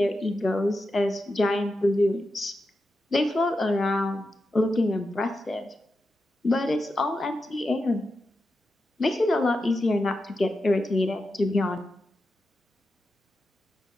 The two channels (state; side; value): normal; both; correlation 0.89